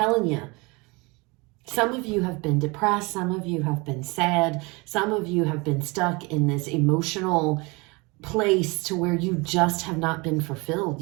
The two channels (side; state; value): left; quieter; 26.6 dB